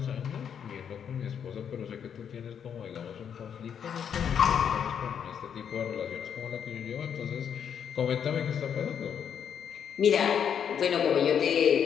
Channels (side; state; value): right; quieter; 8.1 dB